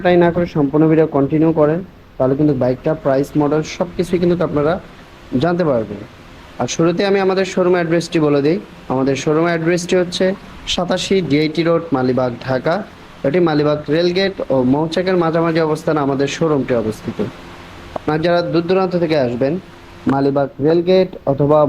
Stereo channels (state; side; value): identical; both; correlation 1.00